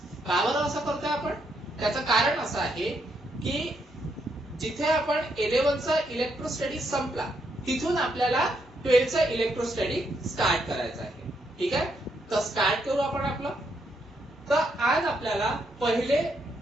का बरं असं करतोय आपण? त्याचं कारण असं आहे की जिथे आपण 11th चा इलेक्ट्रोस्टॅटिक संपला तिथून आपल्याला 12th चा इलेक्ट्रोस्टॅटिक स्टार्ट करायचा आहे. ठीक आहे, तर स्टार्ट करू आपण आपलं. तर आज आपल्याला पहिले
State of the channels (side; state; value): both; normal; correlation 0.77